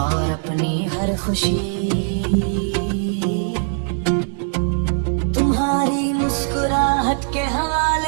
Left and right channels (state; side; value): silent; left; 65 dB below the other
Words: और अपनी हर खुशी तुम्हारी मुस्कुराहट के